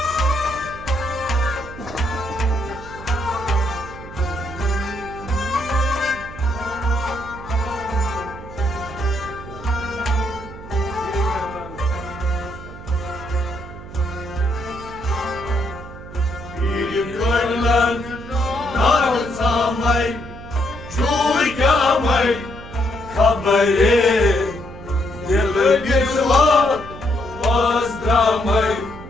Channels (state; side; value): noise; right; hum, 15 dB below the sound